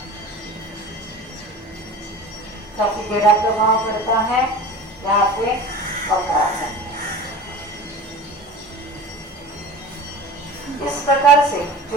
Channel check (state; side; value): normal; both; correlation 0.36